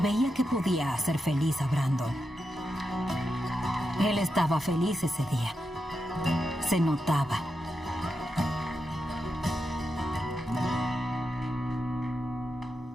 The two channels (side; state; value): both; normal; correlation 0.87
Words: que podía hacer feliz a Brandon. Él estaba feliz ese día. Se notaba.